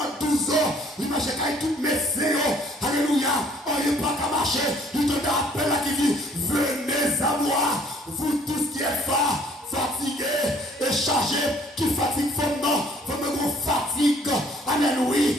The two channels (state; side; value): normal; both; correlation 0.59